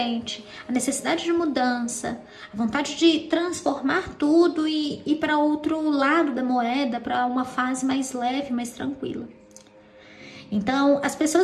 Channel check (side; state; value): both; identical; correlation 1.00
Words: a necessidade de mudança, a vontade de transformar tudo e ir para outro lado da moeda, para uma fase mais leve, mais tranquila. Então, as